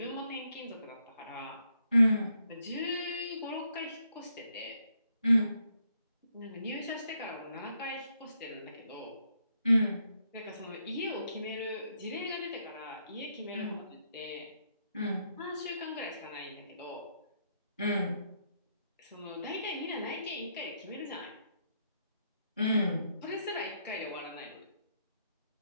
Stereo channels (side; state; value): both; inverted; correlation -0.76